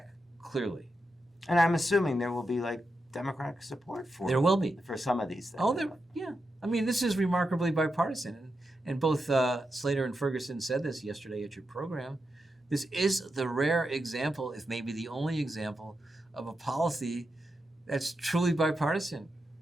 clearly. And I'm assuming there will be Democratic support for There will be. for some of these things. Oh, yeah. I mean, this is remarkably bipartisan, and both Slater and Ferguson said this yesterday at your program. This is the rare example, if maybe the only example, of a policy that's truly bipartisan.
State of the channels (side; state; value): both; normal; correlation 0.87